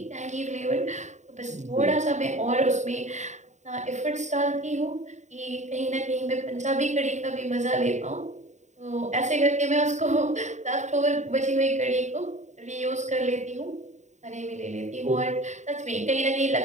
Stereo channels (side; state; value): left; late; 0.34 ms